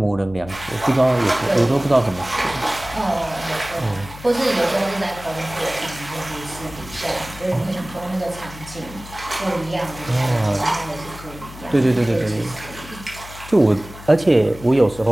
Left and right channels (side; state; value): left; noise; hum, 16 dB below the sound